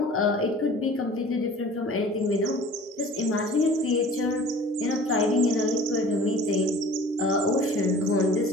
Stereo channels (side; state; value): both; normal; correlation 0.46